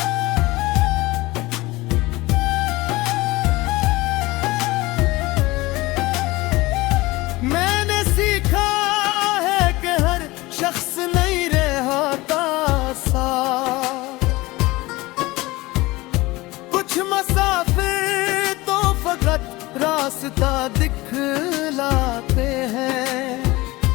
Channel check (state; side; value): quieter; right; 20.7 dB